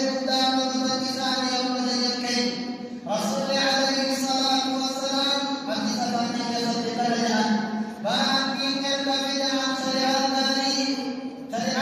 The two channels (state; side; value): identical; both; correlation 1.00